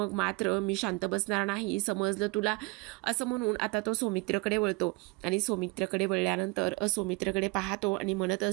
मात्र मी शांत बसणार नाही, समजलं तुला. असं म्हणून आता तो सौमित्रकडे वळतो आणि सौमित्रकडे वळल्यानंतर सौमित्रकडे पाहतो आणि म्हणत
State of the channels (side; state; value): left; quieter; 27.3 dB